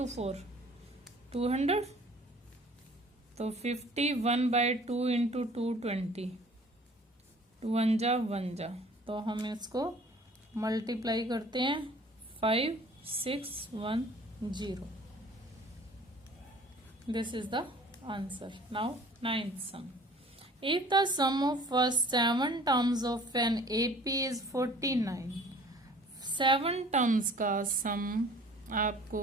4 200, तो 51/2 इंटू 220, 2 1 जा, तो हम इसको मल्टीप्लाई करते हैं 5610। This is the answer. Now 9th sum. If the sum of first 7 terms of an AP is 49, 7 terms का सम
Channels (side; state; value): both; normal; correlation 0.50